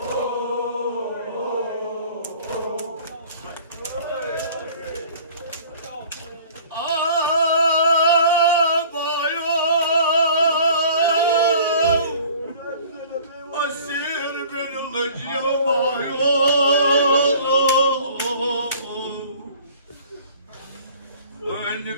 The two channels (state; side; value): inverted; both; correlation -0.48